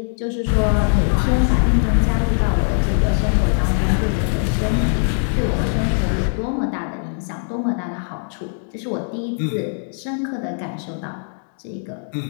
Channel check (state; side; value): silent; right; 65 dB below the other